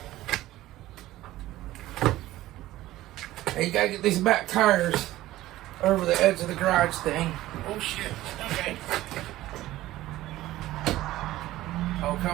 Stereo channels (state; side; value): quieter; left; 15.8 dB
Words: Hey, you gotta get these back tires over the edge of the garage thing. Oh, shit. Okay. Oh,